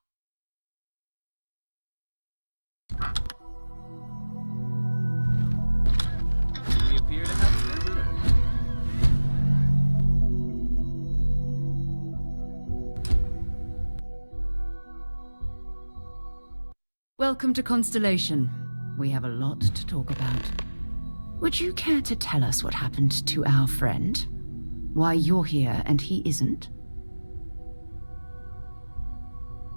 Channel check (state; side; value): inverted; both; correlation -1.00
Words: We appear to have visitors. Welcome to Constellation. We have a lot to talk about. Would you care to tell us what happened to our friend? Why you're here and he isn't?